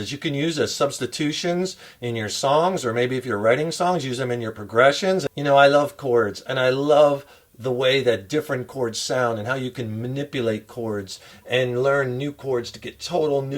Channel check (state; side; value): identical; both; correlation 1.00